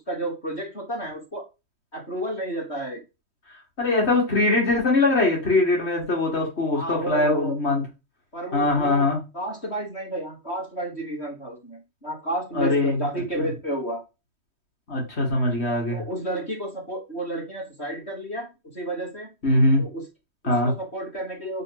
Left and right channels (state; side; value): late; right; 3.1 ms